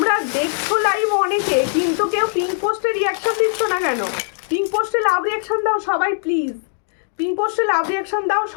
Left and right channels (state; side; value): silent; right; digital silence